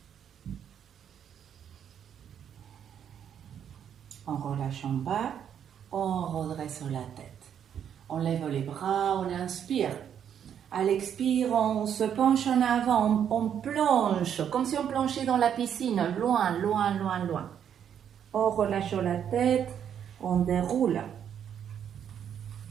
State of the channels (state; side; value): quieter; left; 8.8 dB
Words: On relâche en bas, on redresse la tête. On lève les bras, on inspire. À l'expire, on se penche en avant, on plonge, comme si on plongeait dans la piscine, loin. On relâche la tête, on déroule.